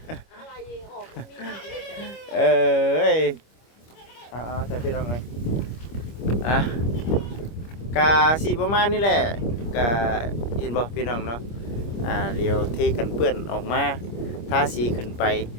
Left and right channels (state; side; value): late; right; 25 ms